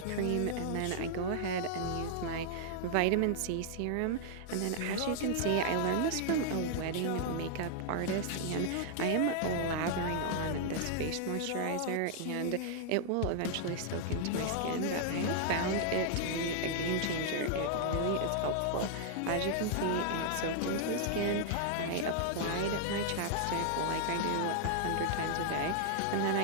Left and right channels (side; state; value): both; different; correlation -0.01